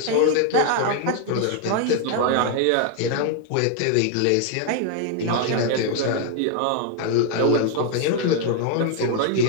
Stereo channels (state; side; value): different; both; correlation 0.00